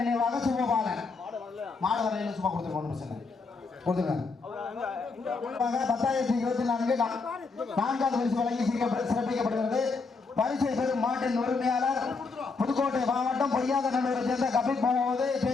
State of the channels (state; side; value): quieter; right; 4.3 dB